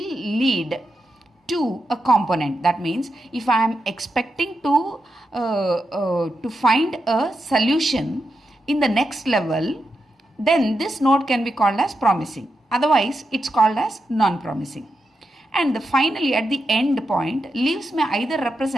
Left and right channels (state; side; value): normal; both; correlation 0.87